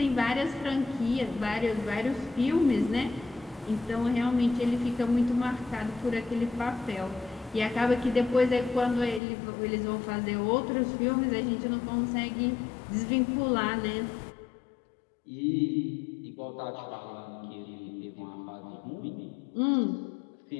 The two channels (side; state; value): right; drops out; at 9.2 s